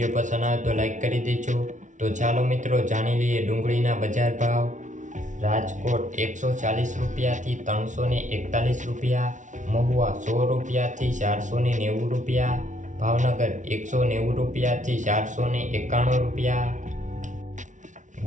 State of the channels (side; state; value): left; late; 0.36 ms